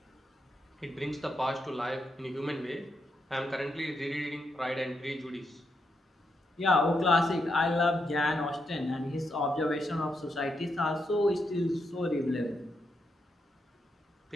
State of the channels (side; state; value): both; normal; correlation 0.82